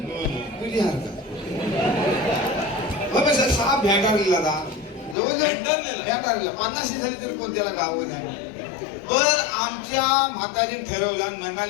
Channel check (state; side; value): drops out; right; at 5.2 s